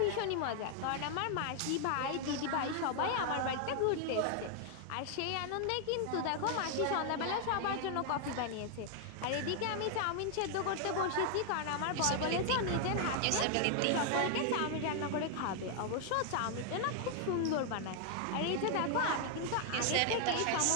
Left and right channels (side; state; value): both; different; correlation 0.00